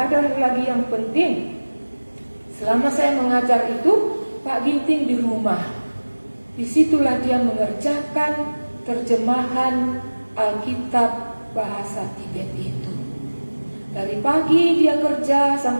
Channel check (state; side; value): inverted; both; correlation -1.00